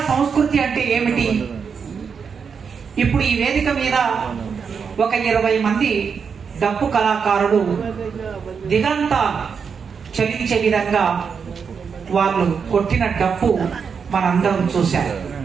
సంస్కృతి అంటే ఏమిటి? ఇప్పుడు ఈ వేదిక మీద ఒక 20 మంది డప్పు కళాకారులు దిగంత చలించే విధంగా వాళ్ళు కొట్టిన డప్పు మనందరం చూశారు.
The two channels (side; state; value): left; quieter; 6.2 dB